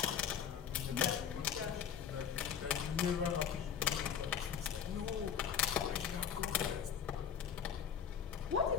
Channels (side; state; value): right; quieter; 8.1 dB